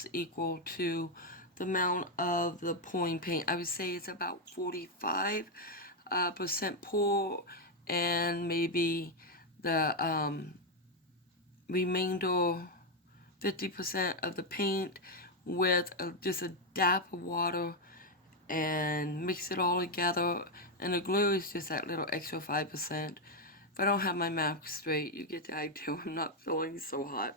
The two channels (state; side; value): normal; both; correlation 0.03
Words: equal to the amount of the pouring paint. I would say it's about 45% pour, and maybe the remainder 50% of the paint with just a dab of water and mix it all together. And the glue is just that little extra 5%. If I don't have my math straight, you get the idea. I'm not feeling so hot,